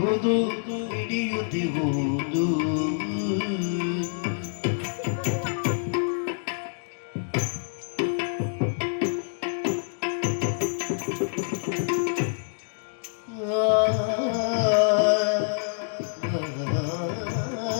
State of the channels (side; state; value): right; silent; digital silence